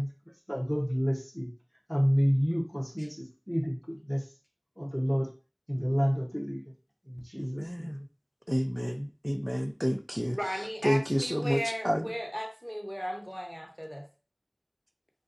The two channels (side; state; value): both; identical; correlation 1.00